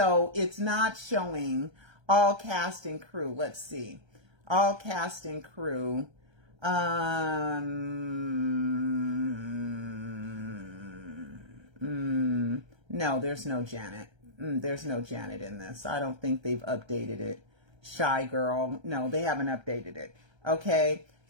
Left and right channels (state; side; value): late; left; 1.3 ms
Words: it's not showing all cast and crew. Let's see. All cast and crew. No, there's no Janet. There's no Janet in this. I don't think they've updated it. Shy Girl. No, they haven't updated it. Okay.